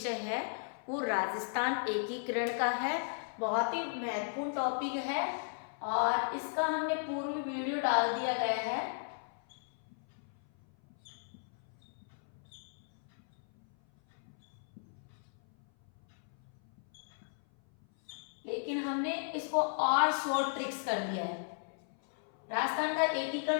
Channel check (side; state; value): right; silent; 54 dB below the other